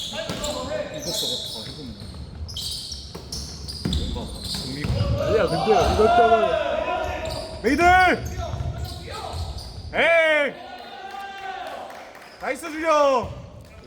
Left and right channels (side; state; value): both; identical; correlation 1.00